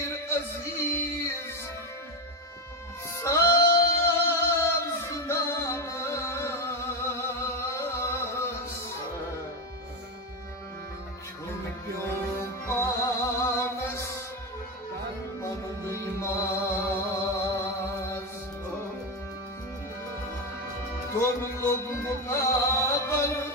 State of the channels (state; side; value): normal; both; correlation 0.14